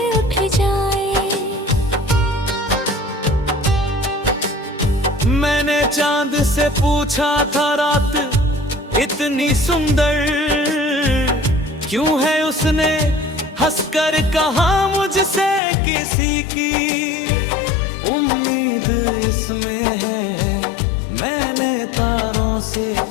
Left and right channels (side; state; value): right; drops out; at 15.6 s